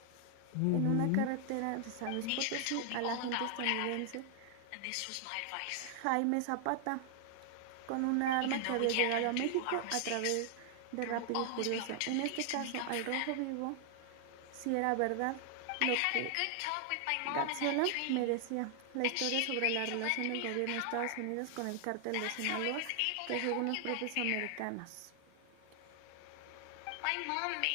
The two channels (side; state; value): both; different; correlation 0.00